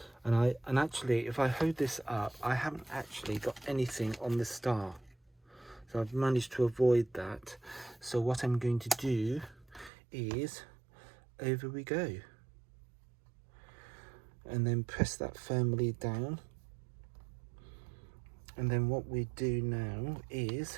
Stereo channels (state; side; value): drops out; left; at 9.9 s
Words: And actually, if I hold this up, I haven't actually got anything on the star. So I've managed to avoid that. So what I'm going to do is, over we go. And then press that firmly down. And then what we do now